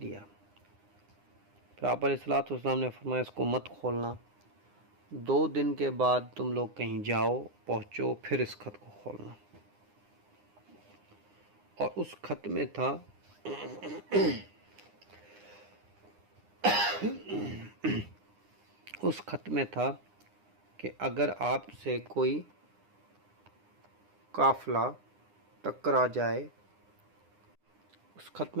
دیا۔ پھر آپ علیہ الصلوۃ والسلام نے فرمایا اس کو مت کھولنا، 2 دن کے بعد تم لوگ کہیں جاؤ، پہنچو، پھر اس خط کو کھولنا۔ اور اس خط میں تھا کہ اگر آپ سے کوئی قافلہ ٹکرا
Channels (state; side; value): late; left; 9.8 ms